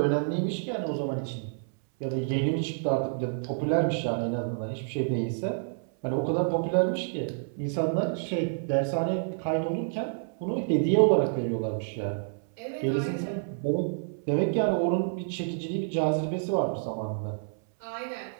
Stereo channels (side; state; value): left; silent; 58 dB below the other